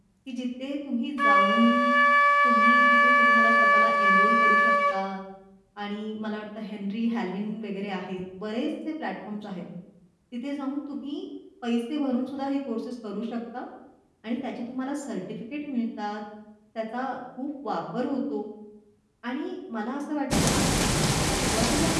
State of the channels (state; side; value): identical; both; correlation 1.00